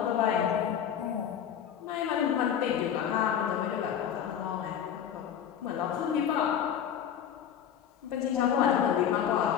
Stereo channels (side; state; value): right; quieter; 9.1 dB